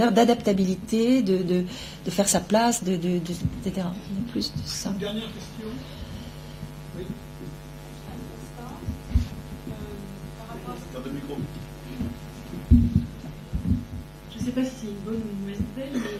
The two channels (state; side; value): identical; both; correlation 1.00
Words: d'adaptabilité, de faire sa place, etc. Il y a plus de ça. Une dernière question. Oui. Je ne sais pas si c'est une bonne ou une mauvaise nouvelle,